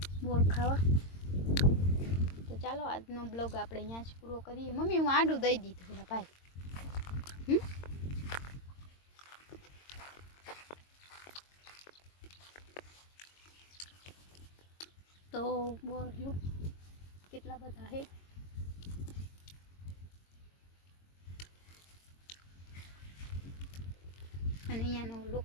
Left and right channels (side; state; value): right; late; 22 ms